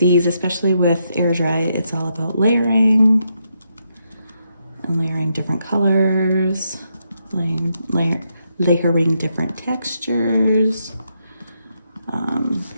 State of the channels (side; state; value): both; inverted; correlation -0.80